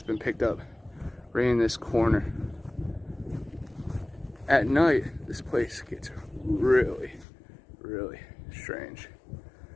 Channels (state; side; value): drops out; right; at 7.2 s